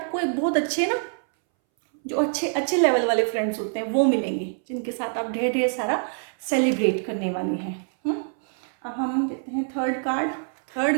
एक बहुत अच्छे ना, जो अच्छे अच्छे लेवल वाले फ्रेंड्स होते हैं वो मिलेंगे, जिनके साथ आप ढेर ढेर सारा सेलिब्रेट करने वाले हैं। अब हम देते हैं third card.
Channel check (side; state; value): left; silent; 62 dB below the other